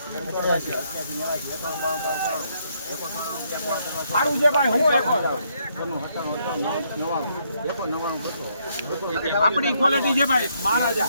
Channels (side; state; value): both; inverted; correlation -0.73